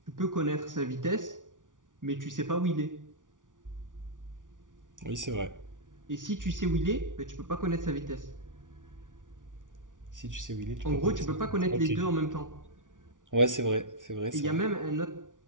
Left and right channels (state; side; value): late; left; 0.88 ms